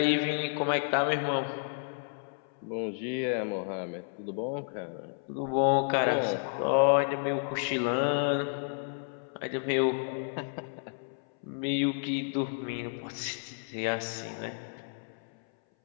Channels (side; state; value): right; silent; 57 dB below the other